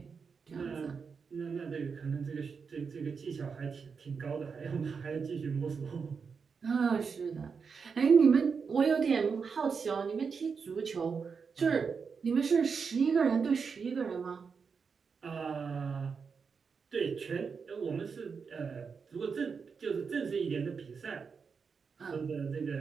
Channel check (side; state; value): left; quieter; 5.6 dB